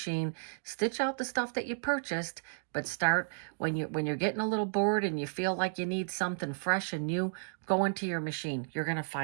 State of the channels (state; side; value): silent; left; digital silence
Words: Stitch out the stuff that you purchased, but start when you're getting a little bored and you feel like you need something fresh and new, go into your machine. You're going to